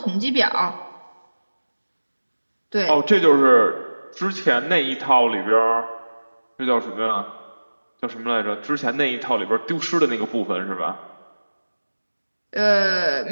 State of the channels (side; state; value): both; inverted; correlation -1.00